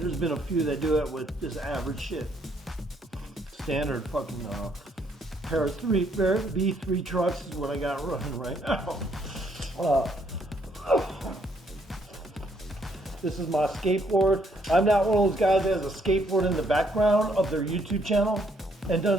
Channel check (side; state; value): both; normal; correlation 0.70